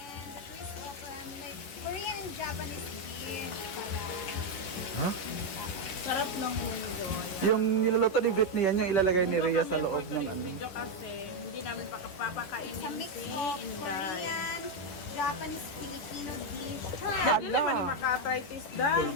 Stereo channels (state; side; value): late; right; 10 ms